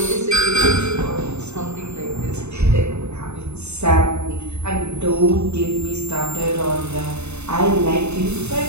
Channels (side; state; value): left; late; 0.81 ms